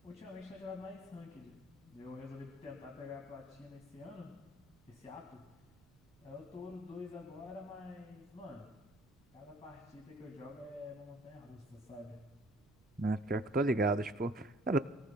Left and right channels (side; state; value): right; noise; rumble, 27 dB below the sound